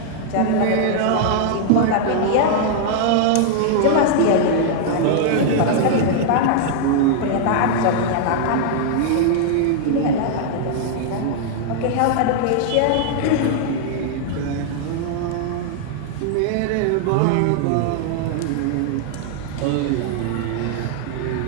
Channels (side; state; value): both; different; correlation -0.01